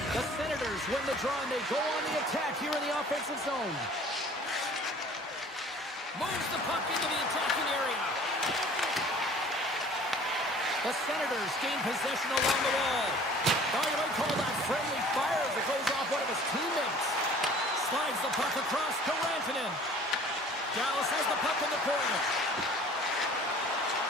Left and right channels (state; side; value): normal; both; correlation 0.49